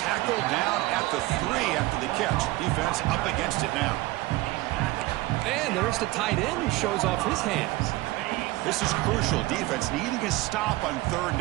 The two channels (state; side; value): quieter; left; 19.3 dB